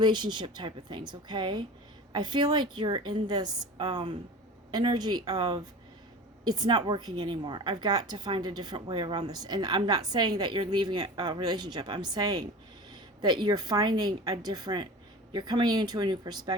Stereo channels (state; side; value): normal; both; correlation 0.35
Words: type of things, okay? I feel like you're in this energy of, it's not working anymore. I've got to find a different way around this. And I'm not saying that you're leaving a relationship. I'm saying that you're finding a different, you're coming into a new